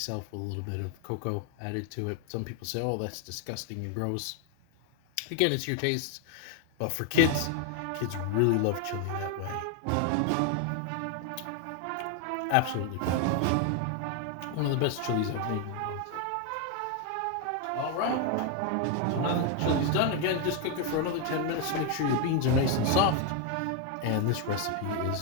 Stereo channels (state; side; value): different; both; correlation 0.01